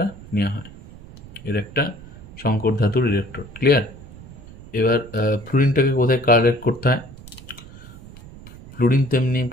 নেওয়া হয়, এর একটা সংকর ধাতুর ইলেকট্রোড। ক্লিয়ার? এবার ফ্লুরিনটাকে কোথায় কালেক্ট করতে হয়, ফ্লুরিন তেমনি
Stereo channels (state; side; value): noise; right; rumble, 18 dB below the sound